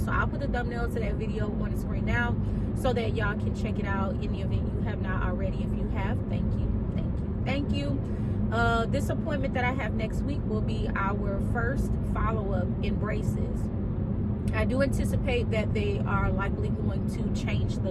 I'll put the thumbnail to that video on the screen now so that y'all can check it out in the event you have not already. If you have, thank you. This appointment that I have next week will be our first follow-up in braces. I do anticipate that they are likely going to change the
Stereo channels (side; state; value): both; identical; correlation 1.00